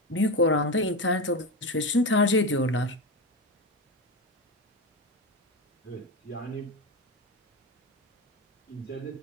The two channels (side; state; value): both; normal; correlation 0.18